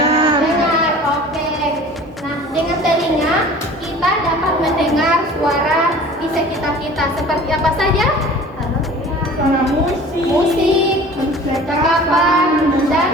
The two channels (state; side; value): normal; both; correlation 0.44